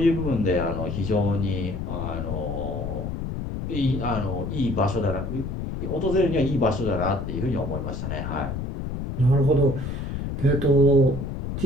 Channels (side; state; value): left; noise; rumble, 5 dB below the sound